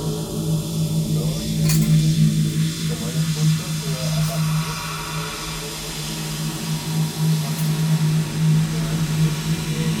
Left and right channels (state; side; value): identical; both; correlation 1.00